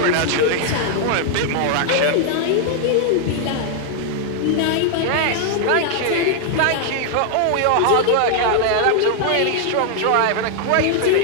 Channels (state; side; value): different; both; correlation 0.00